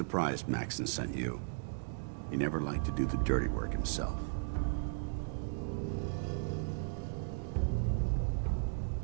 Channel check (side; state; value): left; silent; digital silence